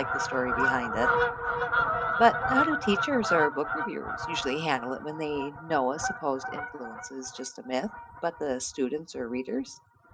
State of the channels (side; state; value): both; identical; correlation 1.00